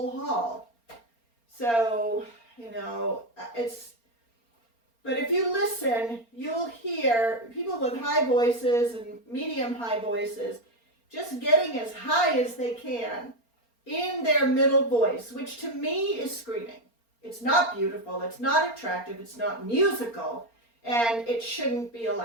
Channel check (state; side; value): late; right; 4.3 ms